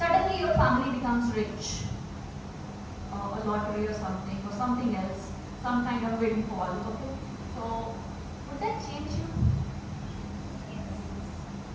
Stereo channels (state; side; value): identical; both; correlation 1.00